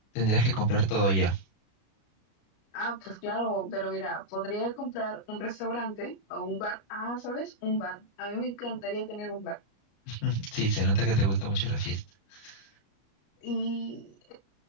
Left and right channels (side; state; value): right; late; 35 ms